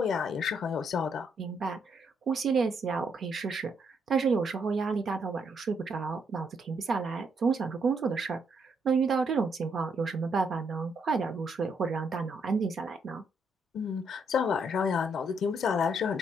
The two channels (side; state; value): both; normal; correlation 0.74